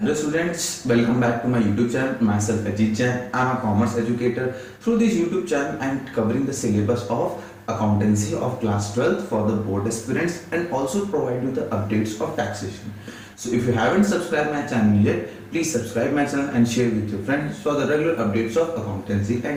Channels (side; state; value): both; identical; correlation 1.00